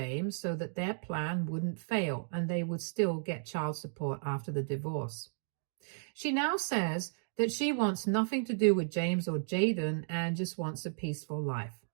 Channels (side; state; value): left; silent; digital silence